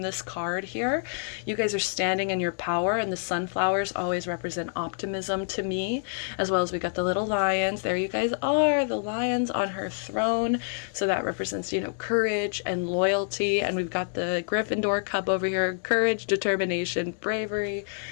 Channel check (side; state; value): right; silent; digital silence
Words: this card here. You guys are standing in your power, and the sunflowers always represent optimism to me, as well as we got the little lions. There you guys are, the lions on her throne. So that represents, you know, courage and loyalty. And we've got the Gryffindor cup over here, courage, determination, bravery.